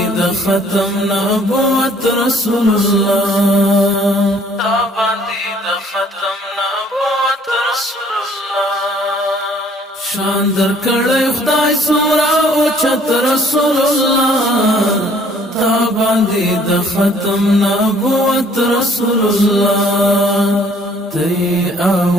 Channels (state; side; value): normal; both; correlation 0.59